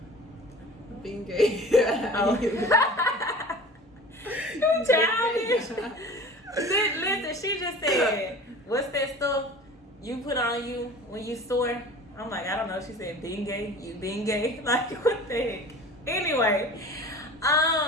Being gay. You childish. Listen, she just said, what's that stuff you put on you when you sore? I'm like, I don't know. She said, being gay. You being gay? Like, what the heck? Anyway,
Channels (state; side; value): normal; both; correlation 0.40